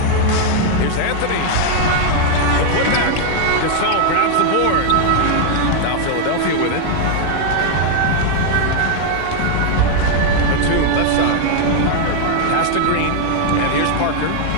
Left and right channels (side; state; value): both; different; correlation 0.00